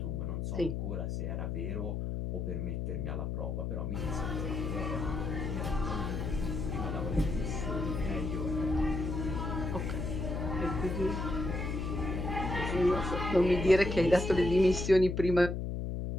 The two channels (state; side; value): noise; left; hum, 2 dB below the sound